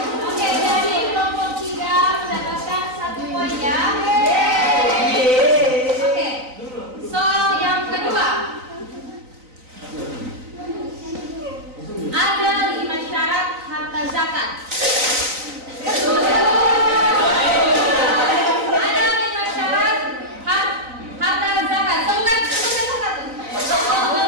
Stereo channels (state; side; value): late; left; 3.9 ms